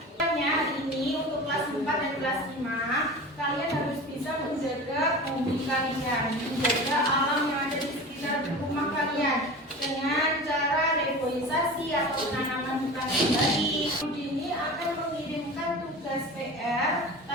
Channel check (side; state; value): both; normal; correlation 0.34